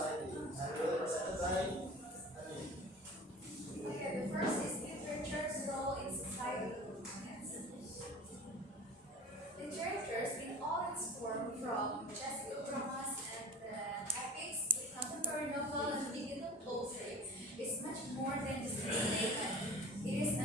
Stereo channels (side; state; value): both; normal; correlation 0.40